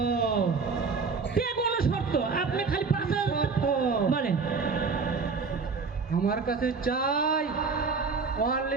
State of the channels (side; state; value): left; quieter; 4.8 dB